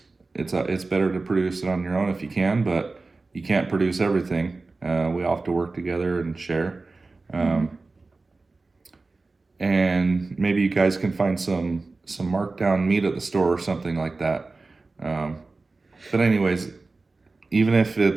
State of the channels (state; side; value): quieter; left; 3.6 dB